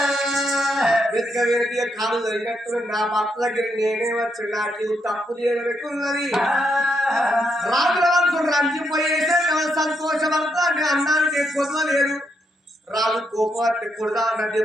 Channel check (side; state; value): both; normal; correlation 0.79